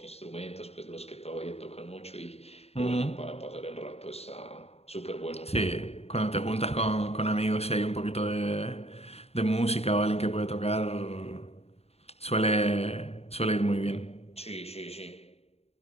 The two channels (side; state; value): right; late; 0.30 ms